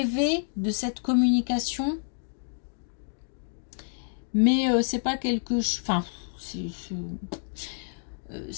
de cette communication, mais c'est pas quelque chose, enfin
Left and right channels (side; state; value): right; silent; 59 dB below the other